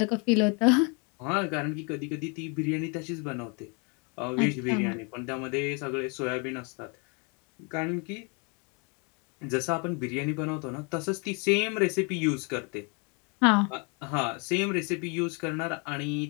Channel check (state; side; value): quieter; right; 34.0 dB